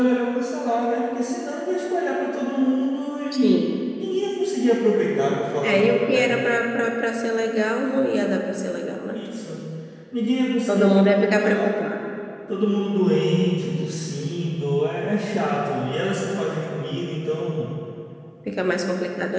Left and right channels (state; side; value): identical; both; correlation 1.00